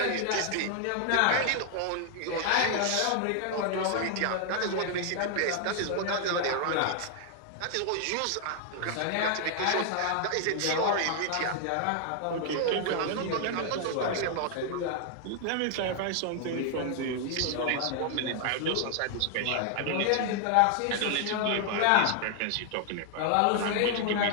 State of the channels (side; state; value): both; different; correlation 0.00